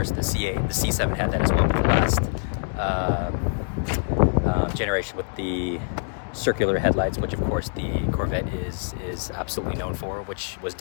The C8, the C7 had that as well, but the last generation with the circular headlights, which of course the Corvette is absolutely known for, which was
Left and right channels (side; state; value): right; silent; digital silence